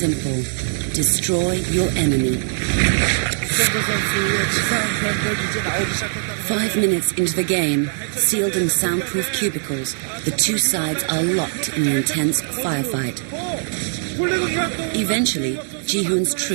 Destroy your enemy. 5 minutes into the game, sealed in soundproof cubicles, the 2 sides are locked in an intense firefight. Eventually, Ji-hoon's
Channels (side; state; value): left; silent; 65 dB below the other